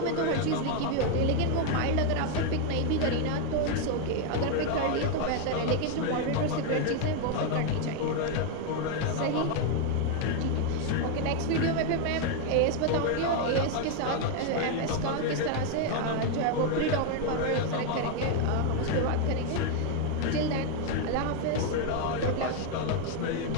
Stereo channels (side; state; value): both; different; correlation 0.01